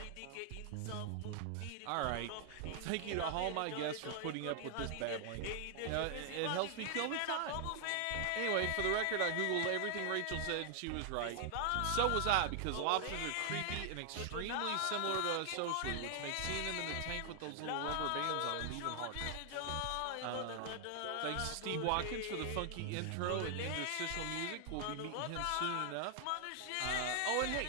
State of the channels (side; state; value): both; different; correlation 0.00